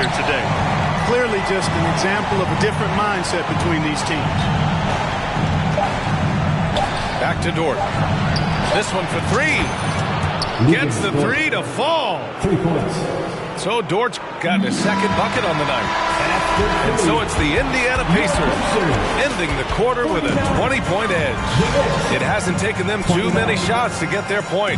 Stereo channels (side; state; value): both; identical; correlation 1.00